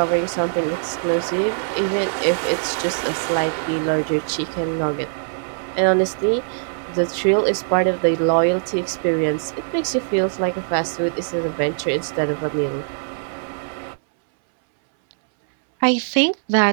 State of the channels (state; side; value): silent; left; 65 dB below the other